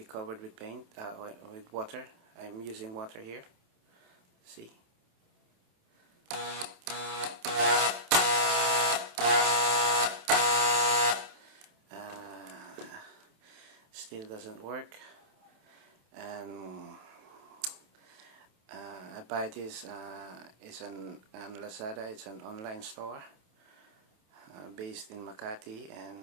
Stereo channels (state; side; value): late; left; 27 ms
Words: covered with paint, with water. I'm using water here. See. Still doesn't work, and I buy this. It's on Lazada. It's an online store based in Makati,